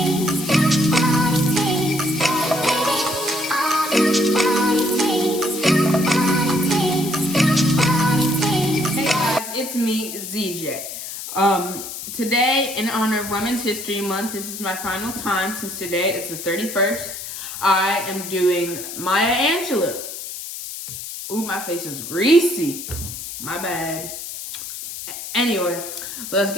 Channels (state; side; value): noise; left; hiss, 9 dB below the sound